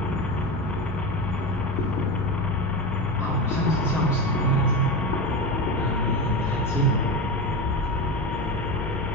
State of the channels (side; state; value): both; normal; correlation 0.21